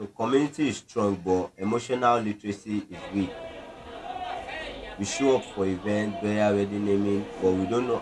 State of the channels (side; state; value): both; identical; correlation 1.00